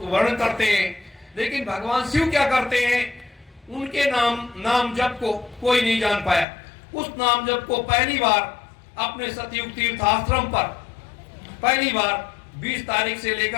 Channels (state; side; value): drops out; right; at 6.5 s